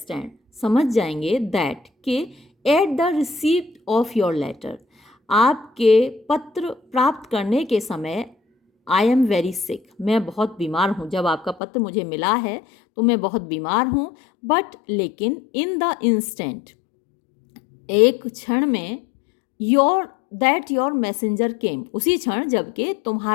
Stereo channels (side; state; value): right; drops out; at 11.6 s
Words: समझ जाएंगे, दैट के at the receipt of your letter, आपके पत्र प्राप्त करने के समय, आई एम वेरी सिक, मैं बहुत बीमार हूँ, जब आपका पत्र मुझे मिला है तो मैं बहुत बीमार हूँ, बट लेकिन इन द इंस्टेंट, एक क्षण में, योर मैसेंजर केम, उसी क्षण जबकि